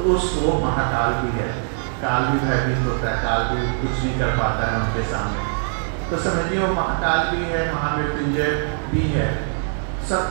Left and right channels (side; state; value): left; silent; 64 dB below the other